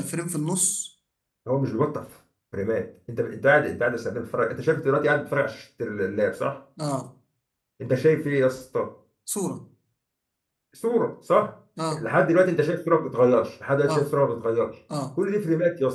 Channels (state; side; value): identical; both; correlation 1.00